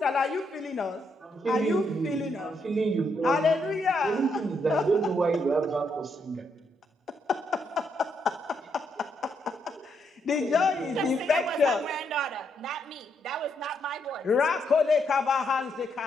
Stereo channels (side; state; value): both; normal; correlation 0.77